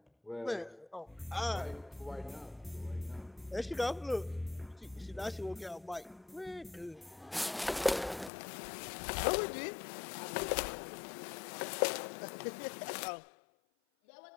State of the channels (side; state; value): right; drops out; at 8.3 s